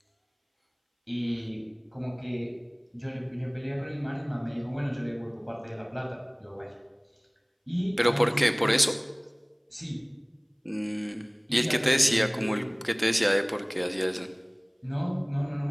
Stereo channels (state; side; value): identical; both; correlation 1.00